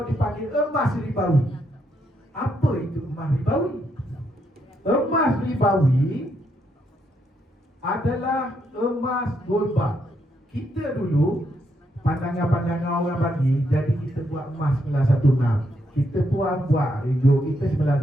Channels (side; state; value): both; normal; correlation 0.78